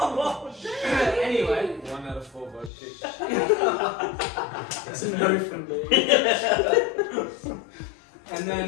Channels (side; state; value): right; drops out; at 2.7 s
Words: Anyway, 1 out of 4 vote kick. It's a no from me. and